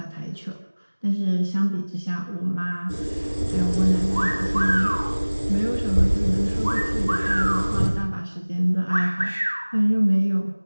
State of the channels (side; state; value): both; inverted; correlation -1.00